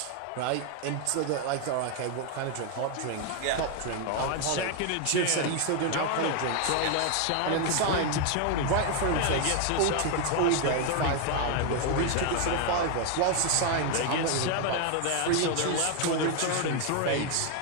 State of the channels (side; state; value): both; different; correlation 0.01